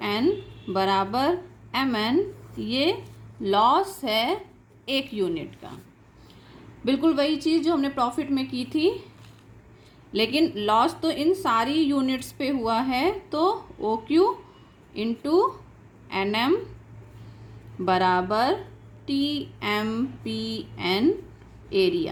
N बराबर एम एन। ये लॉस है एक यूनिट का। बिल्कुल वही चीज़ जो हमने प्रॉफिट में की थी, लेकिन लॉस तो इन सारी यूनिट्स पे हुआ है, तो O Q into N M बराबर T M P N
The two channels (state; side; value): identical; both; correlation 1.00